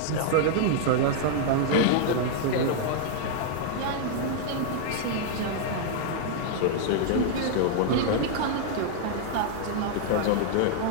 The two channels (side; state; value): both; different; correlation 0.00